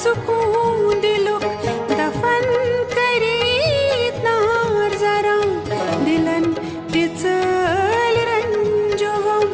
सुकून दिलुक दफन करीत नार जरा दिलन तिचल रंजोगम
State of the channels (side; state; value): both; identical; correlation 1.00